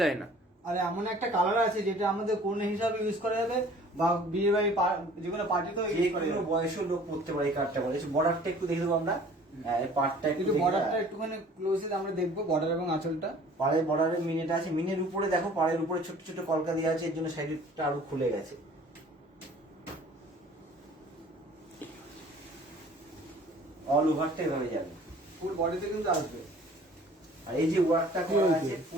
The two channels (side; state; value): both; normal; correlation 0.50